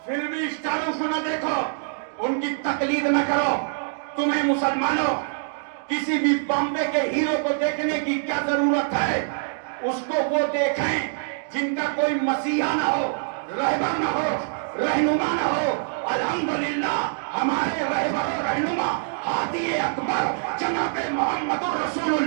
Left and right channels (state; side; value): silent; left; digital silence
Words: فلمی اسٹاروں کو نہ دیکھو, ان کی تقلید نہ کرو. تمہیں مسلمانوں کسی بھی بامبے کے ہیرو کو دیکھنے کی کیا ضرورت ہے؟ اس کو وہ دیکھیں جن کا کوئی مسیحا نہ ہو, رہبر نہ ہو, رہنما نہ ہو. الحمدللہ ہمارے رہبر و رہنما ہادی اکبر جناب محمد رسول